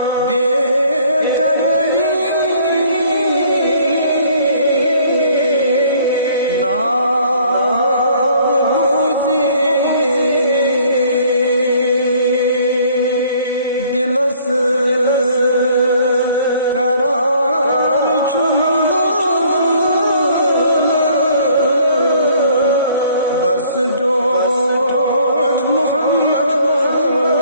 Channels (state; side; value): inverted; both; correlation -0.58